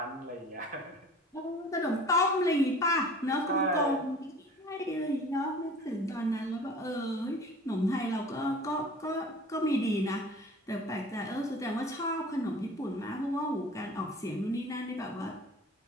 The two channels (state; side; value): normal; both; correlation 0.44